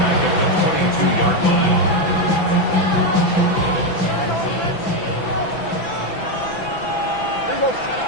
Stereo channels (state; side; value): late; right; 6.0 ms